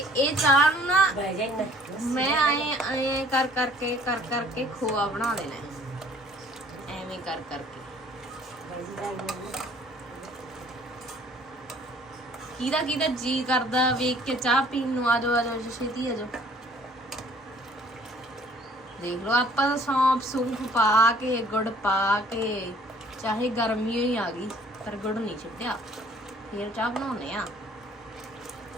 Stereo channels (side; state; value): both; normal; correlation 0.56